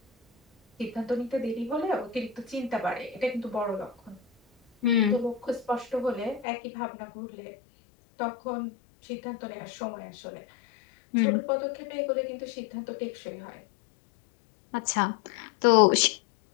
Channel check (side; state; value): right; drops out; at 6.5 s